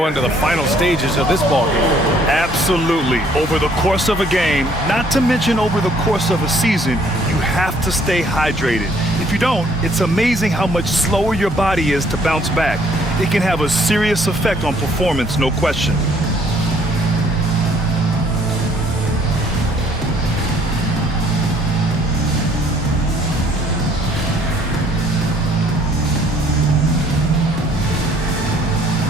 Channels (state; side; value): normal; both; correlation 0.62